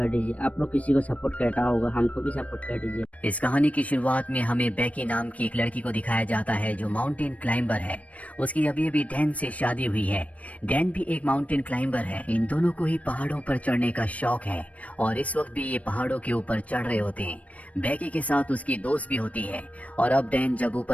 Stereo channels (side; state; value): right; late; 0.067 ms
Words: दीजिए। आप लोग किसी को सपोर्ट करता होगा, हमको भी सपोर्ट कर दीजिए। इस कहानी की शुरुआत में हमें बेकी नाम की एक लड़की को दिखाया जाता है जो माउंटेन क्लाइंबर है। उसकी अभी अभी डैन से शादी हुई है। डैन भी एक माउंटेन क्लाइंबर है। इन दोनों को ही पहाड़ों पर चढ़ने का शौक है और इस वक्त भी ये पहाड़ों के ऊपर चढ़ रहे होते हैं। बेकी के साथ उसकी दोस्त भी होती है और अब डैन जब